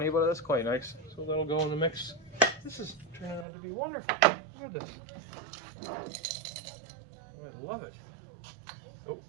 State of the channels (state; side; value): drops out; left; at 3.5 s